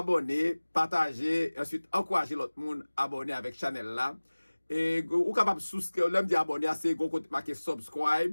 partager, ensuite encourager l'autre monde à abonner avec channel là. Et ou capable souscrire, l'homme dit abonner à ces gros côté marqué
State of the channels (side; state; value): both; inverted; correlation -1.00